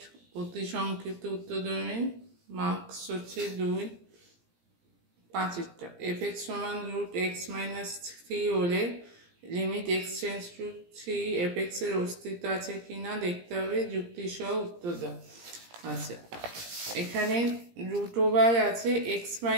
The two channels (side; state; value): left; late; 17 ms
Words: অতি সংক্ষিপ্ত উত্তরধর্মী মার্কস হচ্ছে 2 5টা। f(x) সমান √x-3 হলে limit x tends to 3 f(x) এর অস্তিত্ব আছে কিনা দেখতে হবে, যুক্তি সহ উত্তর দাও। আচ্ছা, এখানে √ওভার আছে